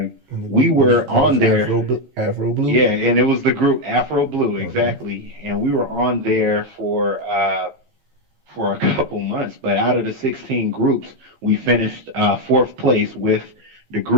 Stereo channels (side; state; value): left; late; 15 ms